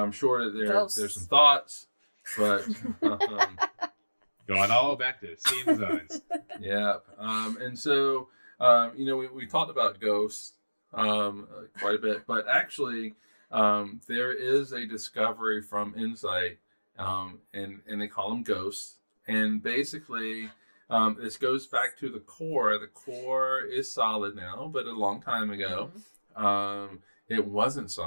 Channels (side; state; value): both; inverted; correlation -1.00